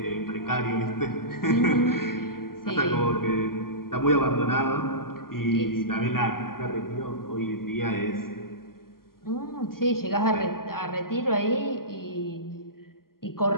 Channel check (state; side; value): late; right; 0.92 ms